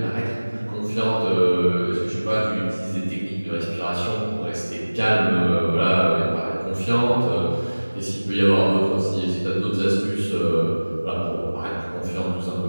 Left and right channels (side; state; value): both; inverted; correlation -1.00